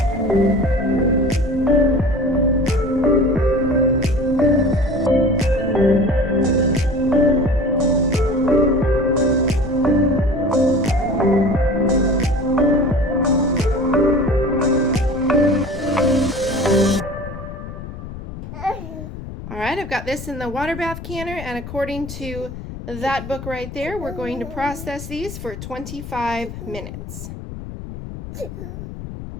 I've got this in the water bath canner, and according to that book right there, we're going to process these for 25 minutes.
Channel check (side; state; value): left; noise; rumble, 11 dB below the sound